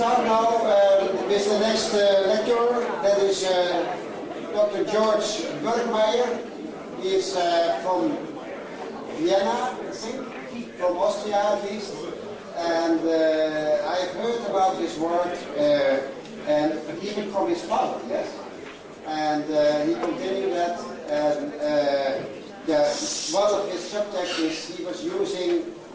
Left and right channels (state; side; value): identical; both; correlation 1.00